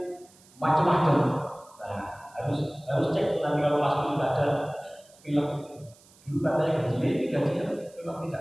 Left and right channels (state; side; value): noise; right; hiss, 27 dB below the sound